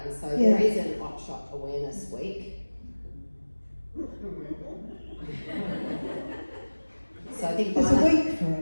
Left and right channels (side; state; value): both; inverted; correlation -1.00